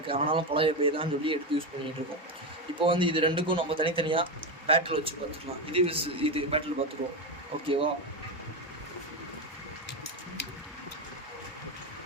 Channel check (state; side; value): normal; both; correlation 0.13